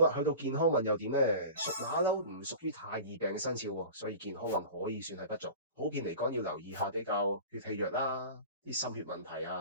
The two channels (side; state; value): both; inverted; correlation -0.36